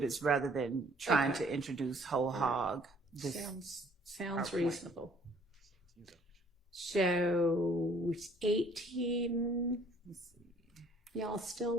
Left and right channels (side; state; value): both; normal; correlation 0.58